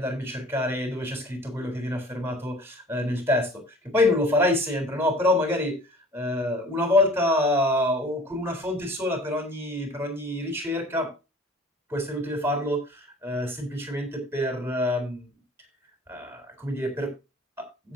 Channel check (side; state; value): both; normal; correlation 0.47